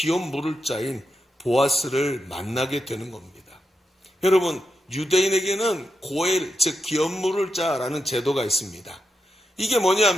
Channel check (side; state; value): both; normal; correlation 0.86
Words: 물을 자인 보아스를 만나게 되는 겁니다. 여러분 유대인에게는 고엘 즉 기업 물을 자라는 제도가 있습니다. 이게